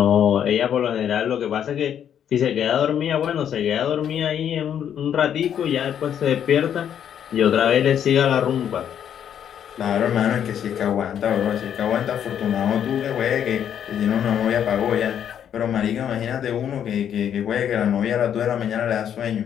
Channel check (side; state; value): right; quieter; 9.2 dB